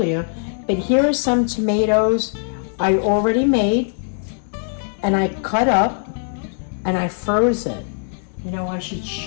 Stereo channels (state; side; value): silent; right; digital silence